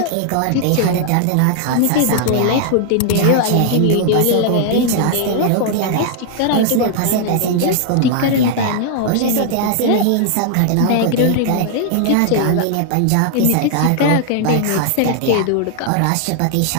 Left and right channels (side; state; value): both; different; correlation 0.00